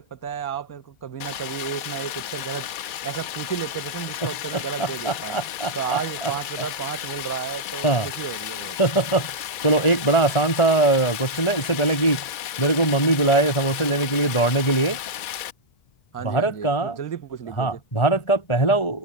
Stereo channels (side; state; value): right; late; 2.3 ms